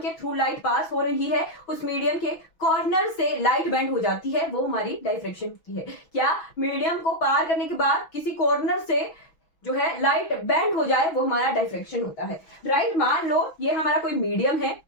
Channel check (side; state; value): right; late; 6.1 ms